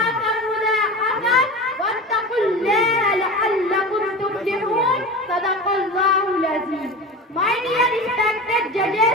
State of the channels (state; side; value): normal; both; correlation 0.30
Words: मुज़ाहफ़atan वत्तक़ुल्लाहा लअल्लकुम तुफ़्लिहून। सदक़ल्लाहुल अज़ीम। My dear respected